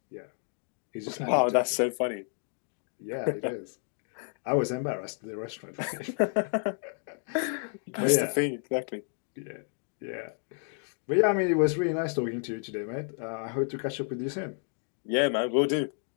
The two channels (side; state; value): right; silent; 55 dB below the other